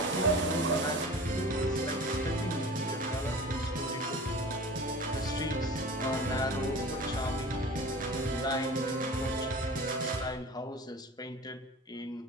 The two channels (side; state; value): both; normal; correlation 0.38